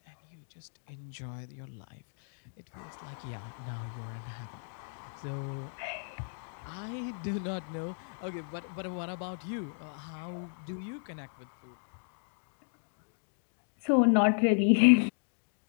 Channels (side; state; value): right; silent; digital silence